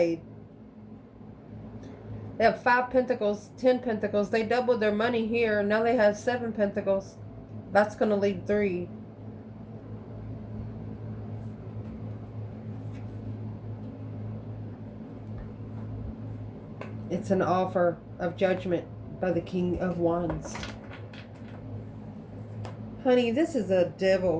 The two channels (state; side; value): identical; both; correlation 1.00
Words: They have 5 pentacles, 10 pentacles. They doubled their money here. Now they have 7 pentacles. That's going to leave 3. It's an offer of judgment by the King of Wands. Honey, this is a